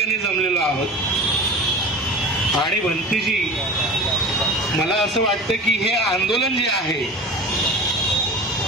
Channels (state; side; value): normal; both; correlation 0.35